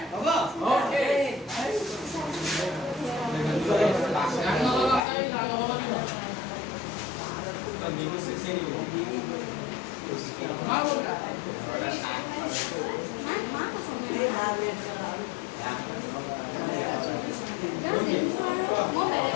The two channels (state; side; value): drops out; right; at 5.0 s